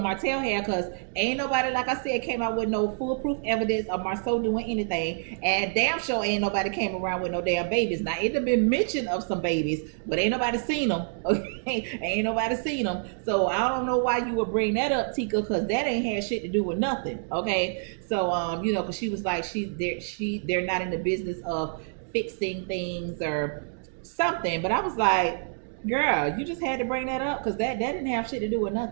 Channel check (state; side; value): silent; left; digital silence